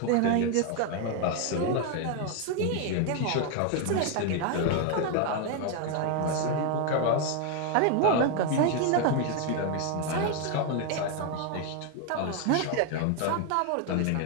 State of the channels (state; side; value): different; both; correlation 0.01